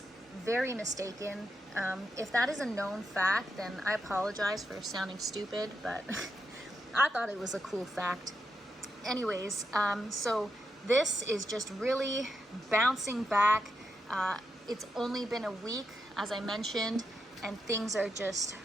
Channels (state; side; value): normal; both; correlation 0.84